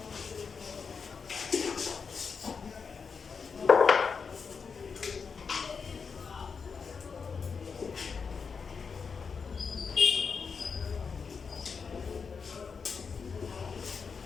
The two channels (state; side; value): quieter; right; 5.6 dB